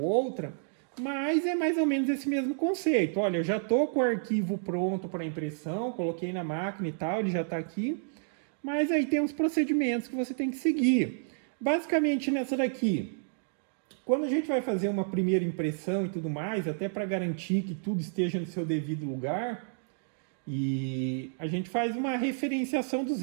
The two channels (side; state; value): left; silent; digital silence